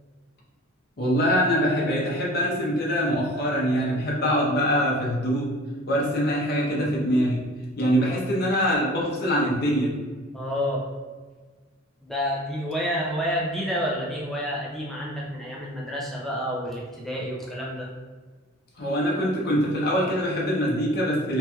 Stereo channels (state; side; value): normal; both; correlation 0.44